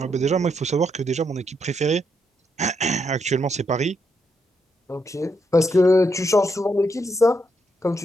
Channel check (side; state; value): both; normal; correlation 0.79